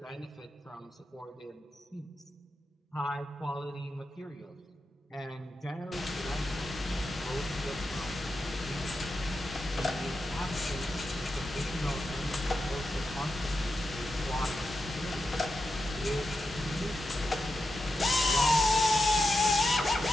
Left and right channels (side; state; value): both; normal; correlation 0.88